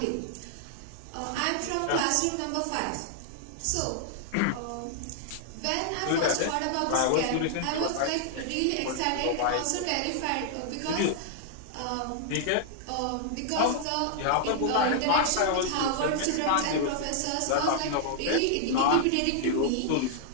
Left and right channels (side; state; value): both; different; correlation -0.01